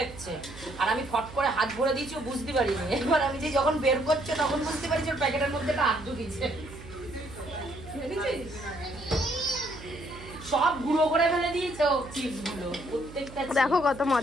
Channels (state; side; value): noise; right; hum, 16 dB below the sound